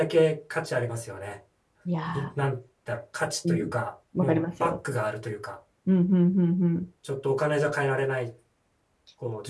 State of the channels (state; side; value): identical; both; correlation 1.00